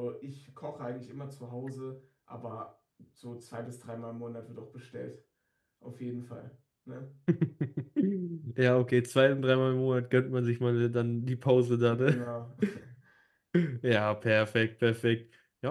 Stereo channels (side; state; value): both; identical; correlation 1.00